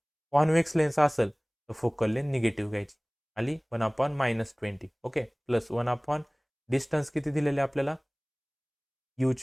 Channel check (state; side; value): identical; both; correlation 1.00